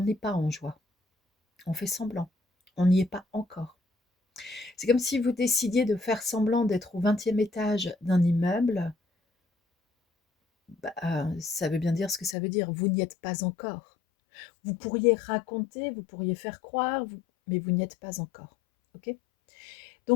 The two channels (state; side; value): drops out; right; at 12.4 s